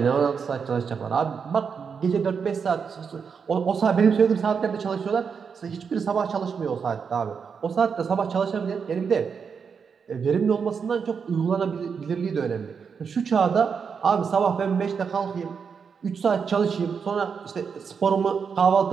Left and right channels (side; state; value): left; quieter; 6.2 dB